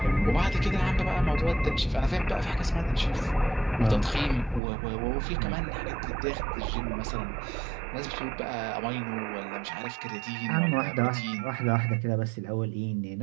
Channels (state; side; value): drops out; left; at 4.6 s